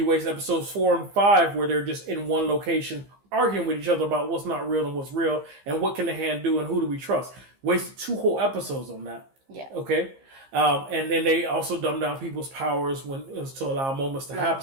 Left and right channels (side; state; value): left; late; 15 ms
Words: waste episodes 4 and 5 where they're just in one location arguing with each other about what's not real and what's real and what can the hand do and who do we trust. Wasted 2 whole episodes on that. Yeah. Okay. And then they also dumb down people's powers when it was to allow moments to happen.